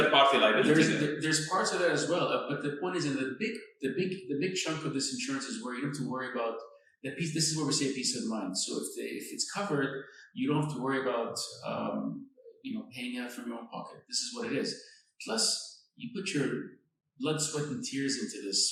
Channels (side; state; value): both; identical; correlation 1.00